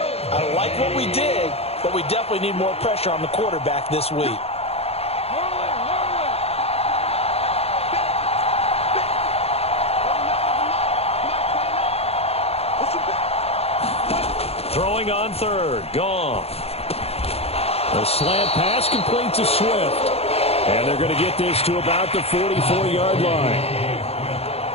I like what we did, but we definitely need more pressure on the quarterback this week. Throwing on 3rd. Goff. A slant pass complete to Swift. And they're going to get this to about the 44-yard line.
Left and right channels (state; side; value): late; right; 0.29 ms